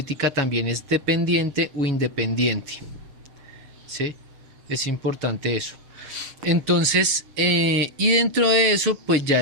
también es dependiente o independiente. ¿Sí? Es importante eso. Entonces, y dentro de eso, pues ya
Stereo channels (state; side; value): late; left; 7.1 ms